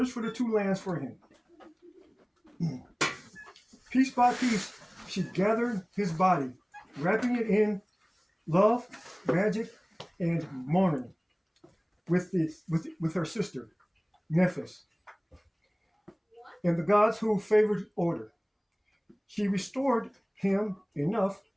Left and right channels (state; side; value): identical; both; correlation 1.00